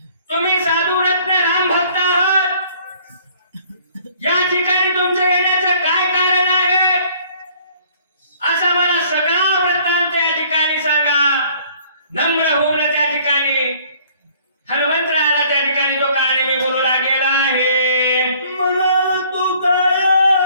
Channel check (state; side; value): inverted; both; correlation -0.57